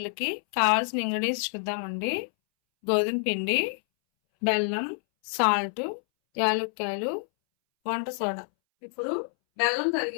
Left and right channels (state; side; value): silent; right; 60 dB below the other